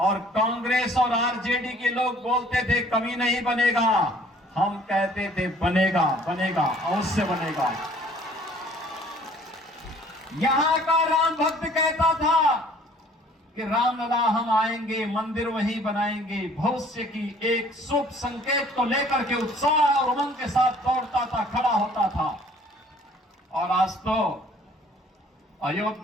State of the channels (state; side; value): normal; both; correlation 0.55